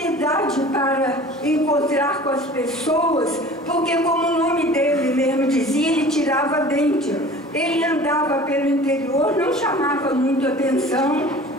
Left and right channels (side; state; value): both; normal; correlation 0.43